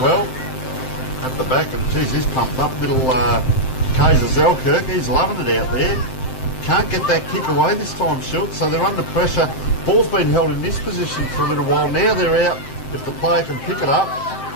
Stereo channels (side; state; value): right; late; 7.7 ms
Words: At the back, and geez, he's pumped up. Little Kaiser Zelkirk, he's loving it out there. Can't get that kick away this time, Schultz, so they're under pressure. Ball's been held in this position for a little while. Now they're out. If the player can pick it up.